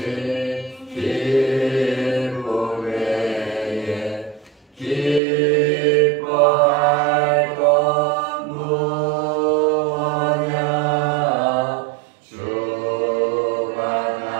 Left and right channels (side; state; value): left; drops out; at 5.2 s